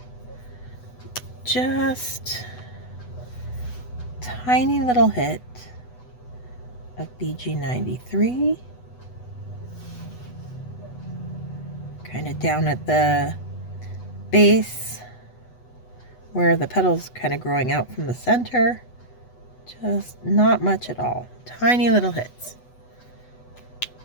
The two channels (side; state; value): right; late; 8.1 ms